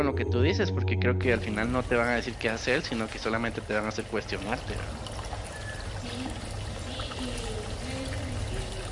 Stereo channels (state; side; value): identical; both; correlation 1.00